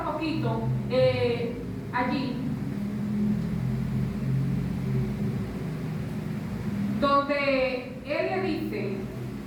un poquito allí, donde él le dice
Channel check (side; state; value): both; identical; correlation 1.00